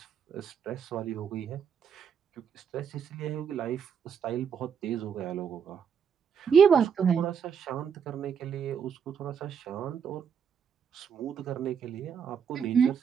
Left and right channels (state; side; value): quieter; left; 7.2 dB